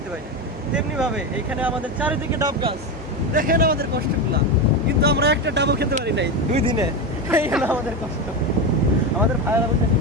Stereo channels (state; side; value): normal; both; correlation 0.16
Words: পাই না। তেমনিভাবে এইখানে আমাদের চারিদিকে ডাব গাছ। দেখেন আমাদের কষ্টগুলা, কিন্তু আমরা একটা ডাবও খেতে পারি নাই 2 দিনে। এই হলো আমাদের কষ্ট। আমাদের ভাইয়েরা বলতে